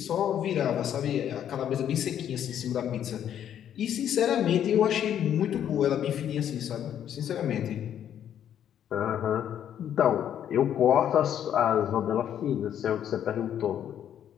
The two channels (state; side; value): quieter; right; 9.9 dB